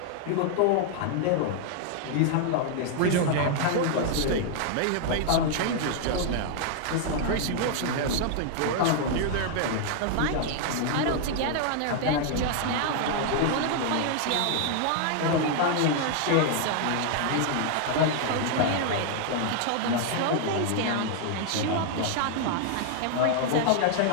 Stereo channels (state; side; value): different; both; correlation 0.00